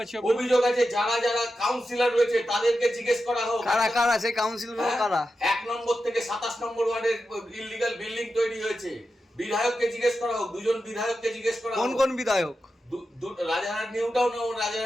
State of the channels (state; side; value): normal; both; correlation 0.90